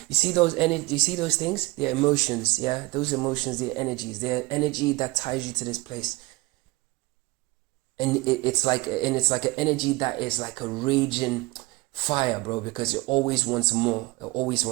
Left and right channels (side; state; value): left; quieter; 21.9 dB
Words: You see those energy? You see those things? They're emotions. Yeah, those emotions. They're energies. They're energy that ties you to this place. And it's like an energy that is like a raging fire, bro. Because it always wants more. It always